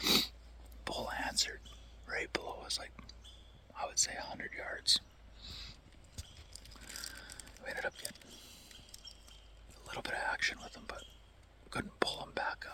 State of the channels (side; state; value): both; identical; correlation 1.00